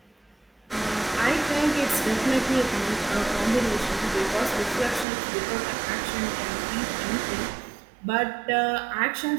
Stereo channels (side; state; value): left; drops out; at 5.1 s